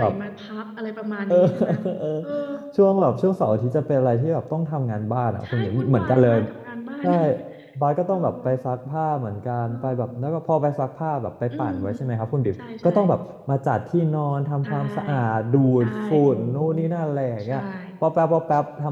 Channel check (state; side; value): identical; both; correlation 1.00